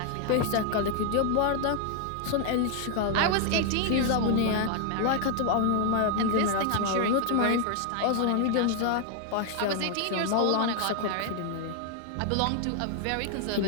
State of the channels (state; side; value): different; both; correlation 0.00